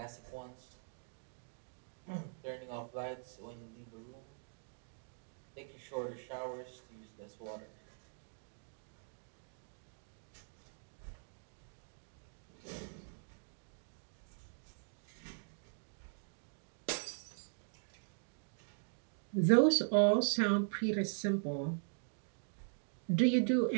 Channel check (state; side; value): silent; left; digital silence